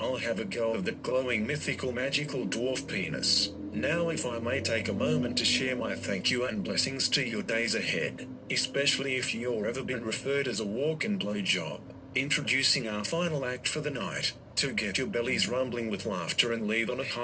have a go of that glowing mythical magical dwarf penis. Now if I may take a moment to share my thank you and blessings to your days ahead, especially if you're ever been referred as a walk-in blowjob. Introducing our final act for the night, to get your bellies rumbling with laughter and leave on a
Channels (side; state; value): both; identical; correlation 1.00